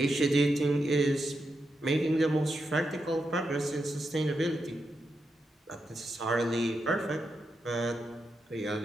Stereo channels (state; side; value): normal; both; correlation 0.86